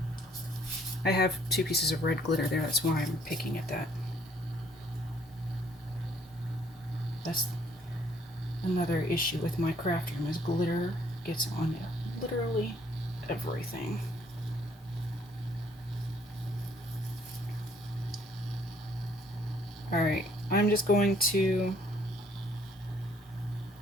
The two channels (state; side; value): normal; both; correlation 0.63